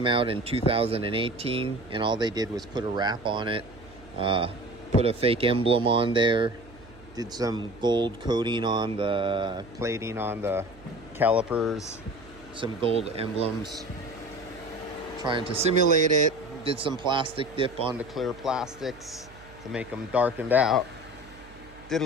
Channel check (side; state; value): right; noise; hum, 22 dB below the sound